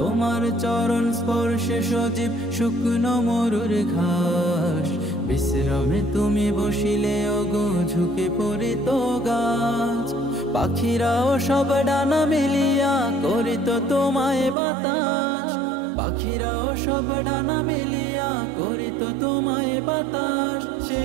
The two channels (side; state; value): left; drops out; at 14.6 s